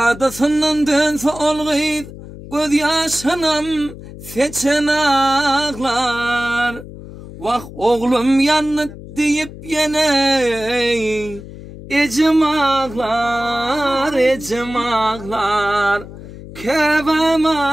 dönse olgıydı, göz yaşanam seçen ağlar. Vak oğlum yanıt deyip yine, ecem ağlar, ecem ağlar. Kevem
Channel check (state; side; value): noise; left; hum, 15 dB below the sound